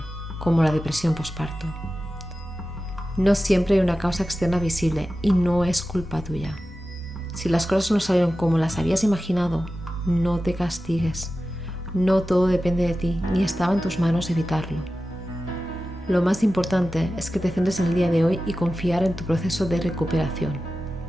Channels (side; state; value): both; normal; correlation 0.94